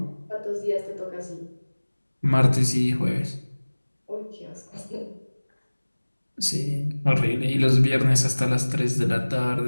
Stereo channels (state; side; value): inverted; both; correlation -1.00